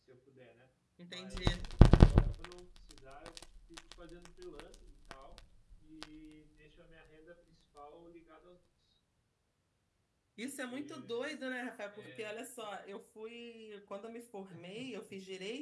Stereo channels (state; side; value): identical; both; correlation 1.00